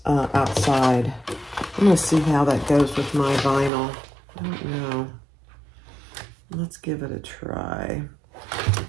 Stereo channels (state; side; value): drops out; left; at 3.7 s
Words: outside. I'm going to see how that goes with my vinyl. I don't know. Let's give it a try.